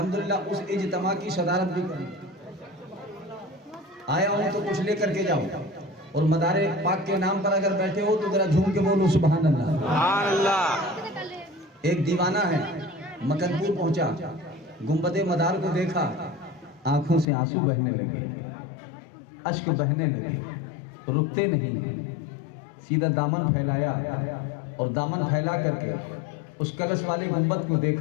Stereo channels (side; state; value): right; drops out; at 17.2 s